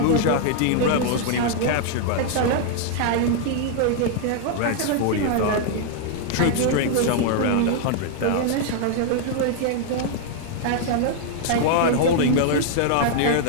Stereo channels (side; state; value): both; different; correlation 0.00